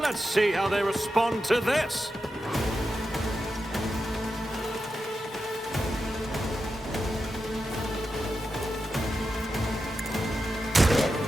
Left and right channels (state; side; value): normal; both; correlation 0.89